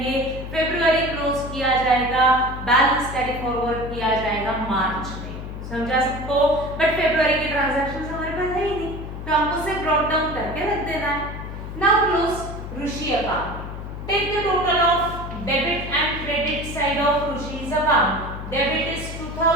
फरवरी क्लोज किया जाएगा, बैलेंस कैरी फॉरवर्ड किया जाएगा मार्च में। समझा सबको? बट फरवरी के ट्रांजैक्शंस हमारे पास है ही नहीं, तो हमको सिर्फ ब्रॉट डाउन करके रख देना है। Now close Ruchi account. Take the total of debit and credit side of रुचि's account. Debit is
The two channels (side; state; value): left; noise; hum, 8 dB below the sound